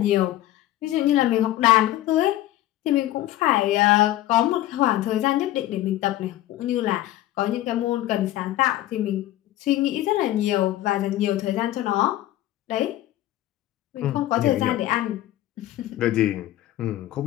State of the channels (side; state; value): right; quieter; 14.7 dB